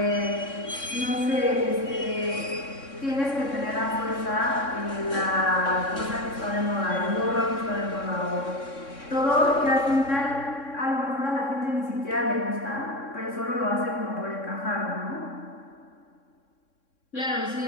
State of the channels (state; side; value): late; right; 3.6 ms